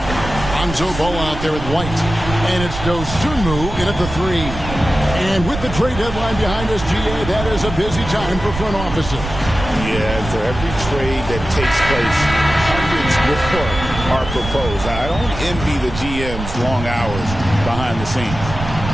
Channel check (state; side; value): noise; right; rumble, 8 dB below the sound